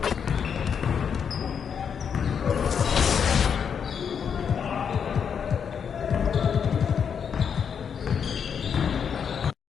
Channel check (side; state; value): right; quieter; 7.2 dB